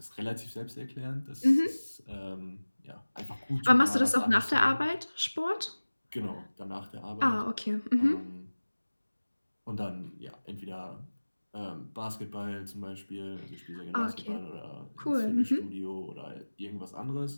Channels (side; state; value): both; inverted; correlation -1.00